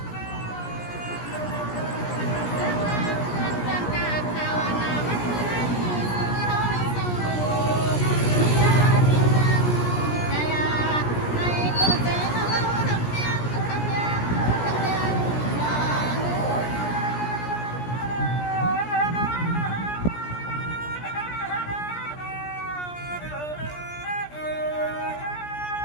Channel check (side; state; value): right; late; 17 ms